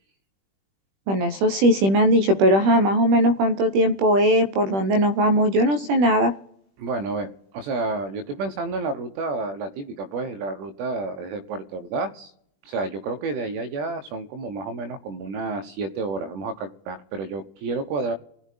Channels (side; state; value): left; late; 21 ms